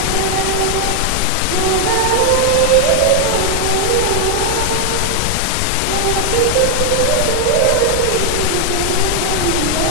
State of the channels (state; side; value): different; both; correlation 0.00